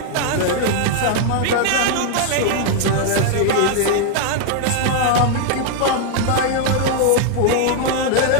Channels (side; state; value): both; different; correlation 0.00